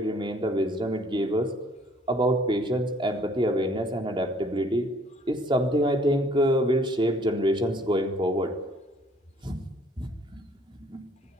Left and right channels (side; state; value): both; normal; correlation 0.59